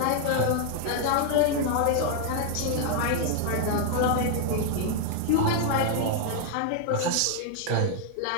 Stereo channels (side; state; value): both; different; correlation 0.00